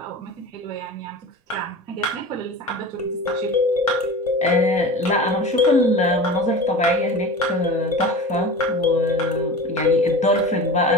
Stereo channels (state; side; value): normal; both; correlation 0.34